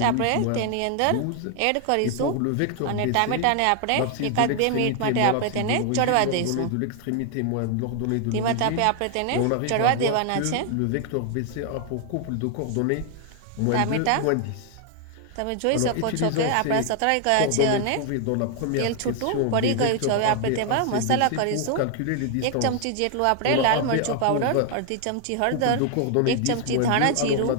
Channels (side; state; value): both; different; correlation 0.00